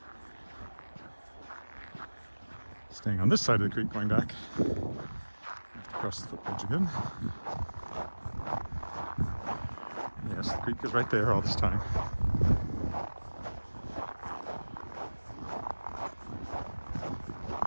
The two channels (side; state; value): both; inverted; correlation -1.00